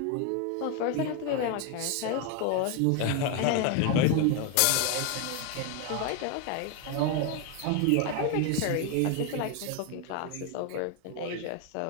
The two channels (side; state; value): both; different; correlation 0.01